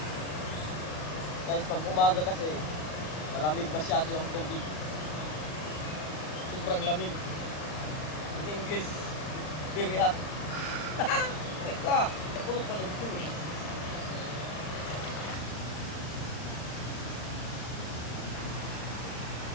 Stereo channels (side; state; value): right; late; 39 ms